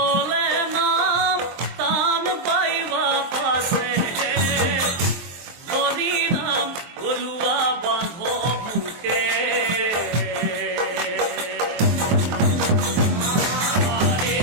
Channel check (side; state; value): left; late; 23 ms